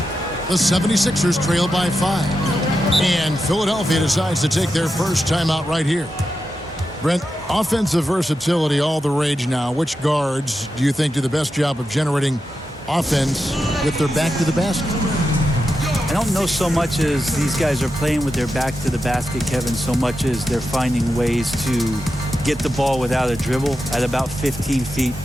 The 76ers trail by 5. And Philadelphia decides to take their first timeout right here. Brent, offensive versatility, all the rage now. Which guards do you think do the best job of generating offense with their back to the basket? I don't know so much as these guys are playing with their back to the basket, Kevin, so much as they're finding ways to get the ball without a dribble at about 15 feet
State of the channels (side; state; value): both; normal; correlation 0.89